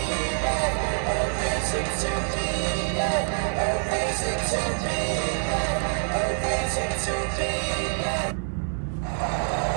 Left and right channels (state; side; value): silent; left; 59 dB below the other